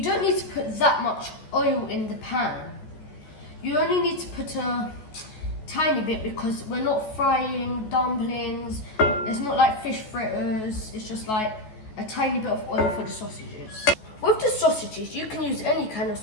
don't need to put that much oil in the pan. You only need to put a tiny bit, because we're not frying dumplings. It's not like fish fritters. It's just like a tiny bit of oil for the sausages. With the sausages, you can use any kind of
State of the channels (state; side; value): late; right; 14 ms